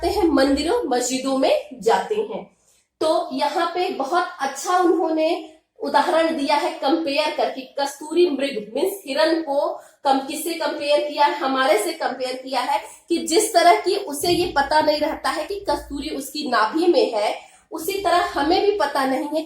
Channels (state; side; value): identical; both; correlation 1.00